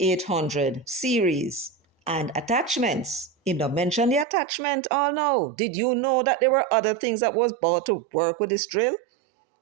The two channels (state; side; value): drops out; left; at 4.2 s